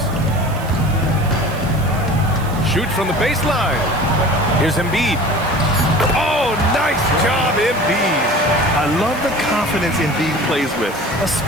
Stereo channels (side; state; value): right; noise; hiss, 19 dB below the sound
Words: Shoot from the baseline. Here's Embiid. Oh, nice job, Embiid. I love the confidence Embiid plays with,